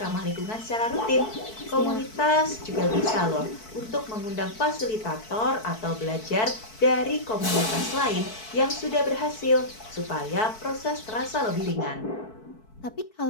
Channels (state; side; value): late; right; 4.6 ms